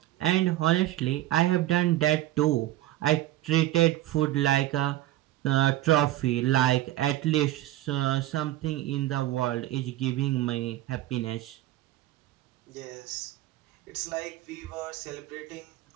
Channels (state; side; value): quieter; left; 15.0 dB